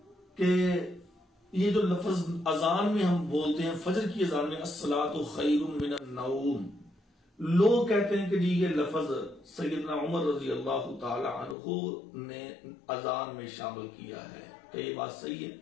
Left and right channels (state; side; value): drops out; right; at 11.6 s